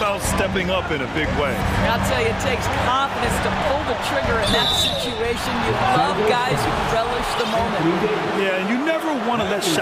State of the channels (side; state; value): both; identical; correlation 1.00